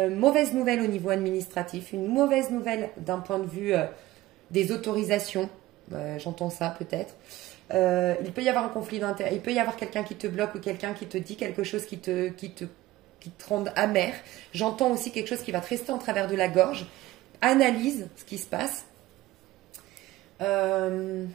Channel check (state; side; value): quieter; left; 16.9 dB